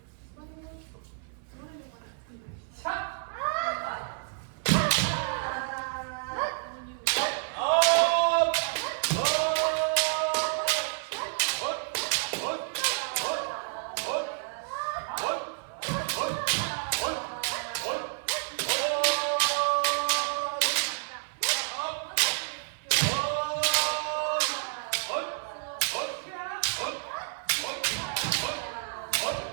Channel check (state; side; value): silent; left; 58 dB below the other